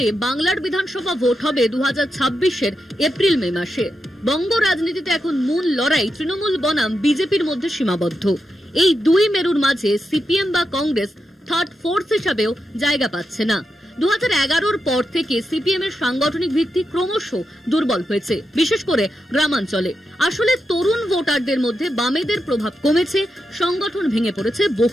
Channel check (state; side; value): normal; both; correlation 0.87